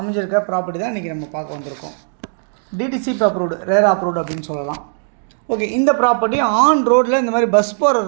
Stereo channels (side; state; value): left; silent; digital silence